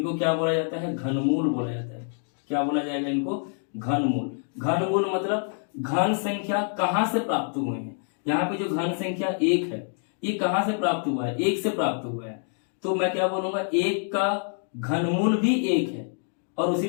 क्या बोला जाता है, घनमूल बोला जाता है। क्या बोला जाएगा इनको, घनमूल। घनमूल मतलब घन संख्या कहां से प्राप्त हुए हैं। यहाँ पे जो घन संख्या 1 है ये कहां से प्राप्त हुआ है, 1 से प्राप्त हुआ है, तो मैं क्या बोलूंगा, 1 का घनमूल भी 1 है, और उसी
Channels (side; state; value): right; silent; 61 dB below the other